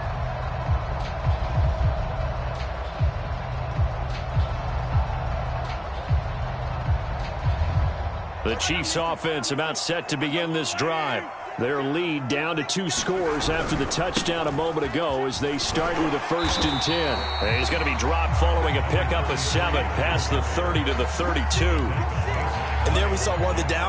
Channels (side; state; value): both; identical; correlation 1.00